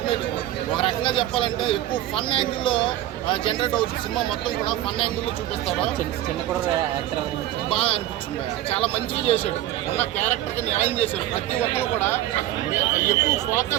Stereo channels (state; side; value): quieter; left; 13.9 dB